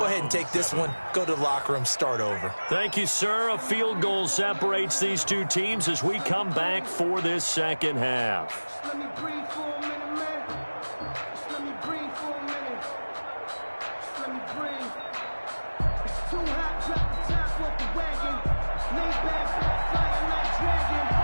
ahead and take this one, go to the locker room, start over. Thank you, sir. A field goal separates these two teams as we come back for this second half. Just let me breathe for a minute, man. Just let me breathe for a minute. Just let me breathe. It's too hot, drop the top off the wagon. Lay back, fire like dragon.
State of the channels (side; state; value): both; inverted; correlation -1.00